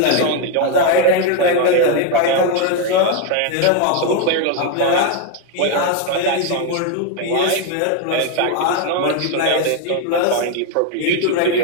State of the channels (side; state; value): both; different; correlation 0.01